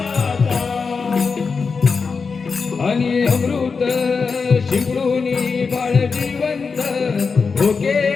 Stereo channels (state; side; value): quieter; right; 5.0 dB